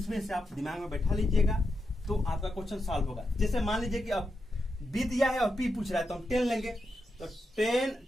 से आप दिमाग में बैठा लीजिएगा तो आपका क्वेश्चन सॉल्व होगा। जैसे मान लीजिए कि अब बी दिया है और पी पूछ रहा है, तो हम 10 लेंगे, तो 10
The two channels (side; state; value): both; normal; correlation 0.86